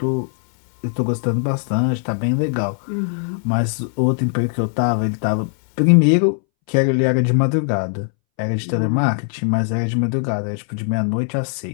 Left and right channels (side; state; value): right; silent; 64 dB below the other